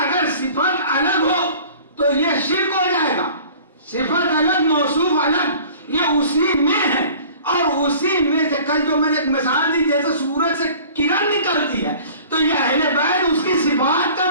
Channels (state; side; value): inverted; both; correlation -0.46